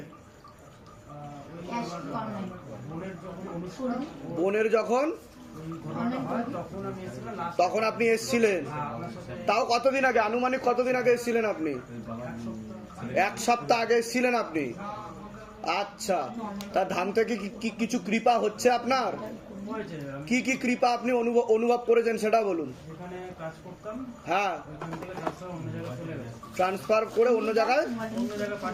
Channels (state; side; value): identical; both; correlation 1.00